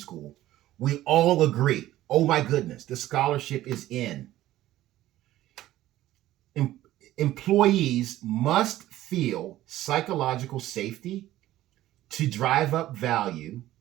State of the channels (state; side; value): quieter; left; 14.7 dB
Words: We all agree, oh my goodness, the scholarship is in. Employees must feel psychological safety to drive up value,